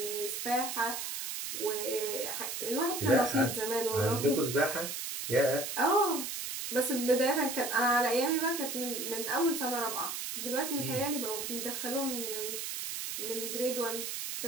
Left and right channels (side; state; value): right; noise; hiss, 4 dB below the sound